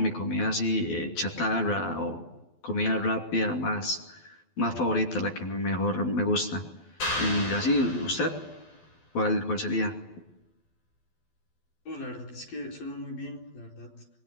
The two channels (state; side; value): late; right; 12 ms